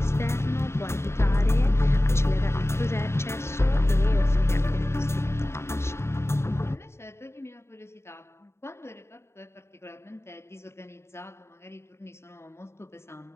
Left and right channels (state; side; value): late; right; 0.13 ms